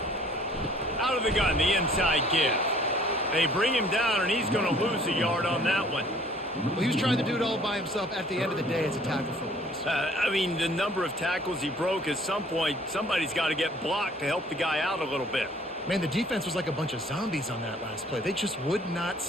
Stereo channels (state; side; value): normal; both; correlation 0.56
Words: Out of the gun, the inside give. They bring him down, and he's going to lose a yard on that one. Well, he was trying to do it all by himself. At the end of the day, it's a tackle for loss. I mean, the number of tackles he broke, at some point, somebody's got to get blocked to help the guy out a little bit. Man, the defense was like a bunch of zombies on that last play. They just would not